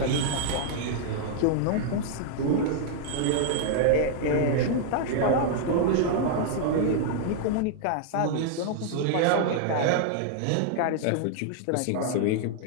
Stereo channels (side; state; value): both; different; correlation -0.01